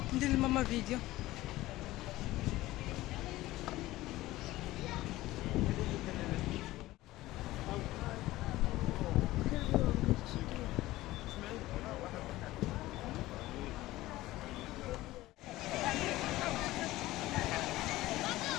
ندير لماما فيديو.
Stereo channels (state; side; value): quieter; right; 17.2 dB